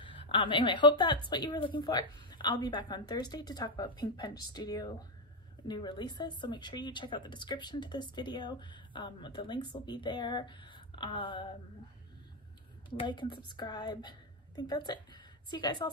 Anyway, I hope that's what you were looking for. I'll be back on Thursday to talk about Pink Punch Studio new releases, so make sure you check out the description to this video. The links will be there. Like and subscribe. I think that's it. See you guys all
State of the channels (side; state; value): both; normal; correlation 0.05